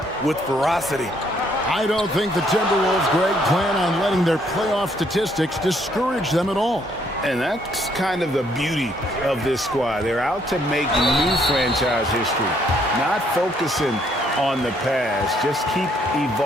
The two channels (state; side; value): normal; both; correlation 0.68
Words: with ferocity. I don't think the Timberwolves, Greg, plan on letting their playoff statistics discourage them at all. And that's kind of the beauty of this squad. They're out to make new franchise history, not focusing on the past, just keep